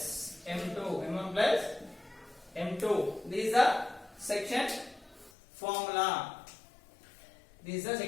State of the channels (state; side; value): drops out; right; at 5.3 s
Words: M2. This is the section formula. This is the